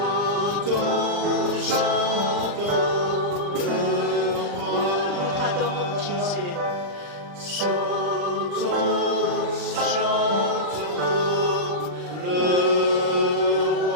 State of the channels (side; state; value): left; late; 40 ms